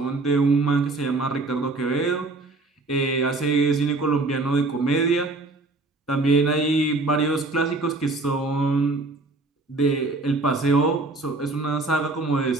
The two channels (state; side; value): quieter; left; 3.3 dB